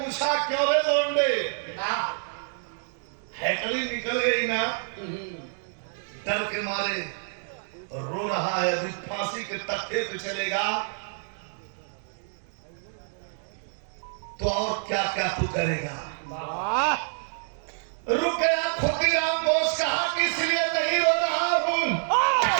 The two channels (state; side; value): silent; left; digital silence